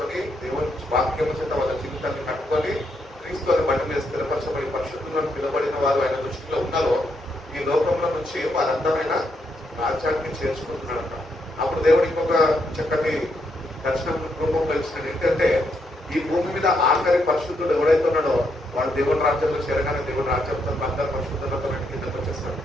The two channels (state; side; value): normal; both; correlation 0.78